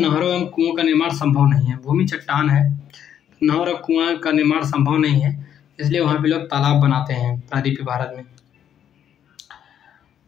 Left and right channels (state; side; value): quieter; right; 9.6 dB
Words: एवं कुओं का निर्माण संभव नहीं है। भूमि चट्टान है, नहर और कुआं का निर्माण संभव नहीं है, इसलिए वहाँ पे लोग तालाब बनाते हैं प्रायद्वीपीय भारत में।